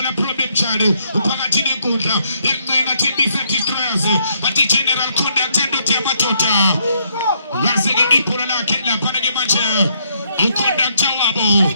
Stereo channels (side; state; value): both; inverted; correlation -0.72